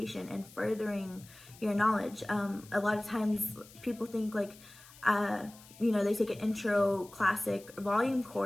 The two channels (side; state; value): left; noise; hiss, 22 dB below the sound